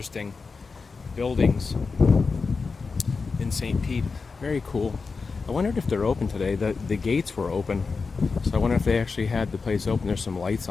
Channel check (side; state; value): right; quieter; 4.6 dB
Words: buildings in St. Pete. Very cool. I wondered if they're open today. The gates were open, so I wonder if they actually had the place open. There's some lights